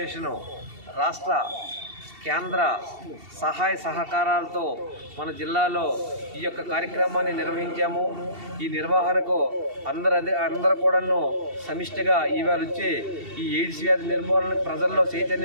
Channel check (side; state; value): left; late; 2.7 ms